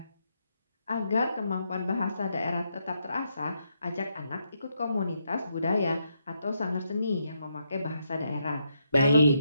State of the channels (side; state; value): both; inverted; correlation -0.79